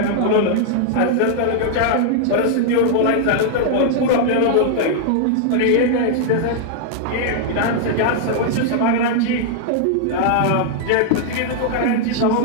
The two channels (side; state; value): both; different; correlation -0.01